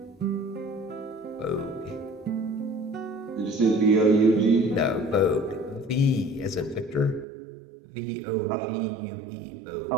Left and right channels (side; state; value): left; drops out; at 7.2 s